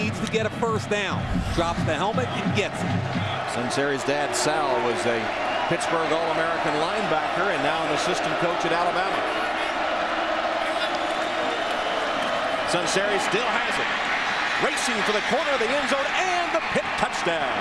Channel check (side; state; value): both; identical; correlation 1.00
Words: to get a first down. Drops the helmet and gets it. Sunseri's dad, Sal, was a Pittsburgh All-American linebacker and now an assistant coach at Alabama. Sunseri still has it. Racing for the corner of the end zone and the Pitt touchdown.